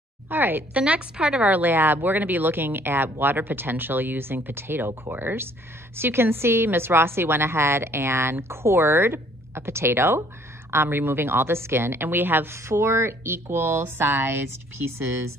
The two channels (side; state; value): both; normal; correlation 0.60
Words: All right, the next part of our lab, we're gonna be looking at water potential using potato cores. So you can see Miss Rossi went ahead and cored a potato, removing all the skin, and we have 4 equal-sized pieces